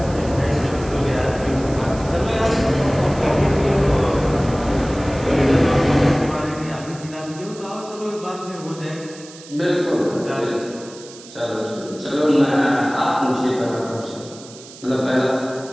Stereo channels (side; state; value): right; noise; hiss, 18 dB below the sound